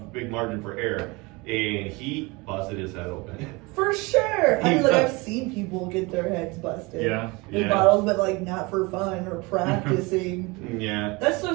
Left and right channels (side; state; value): left; quieter; 25.4 dB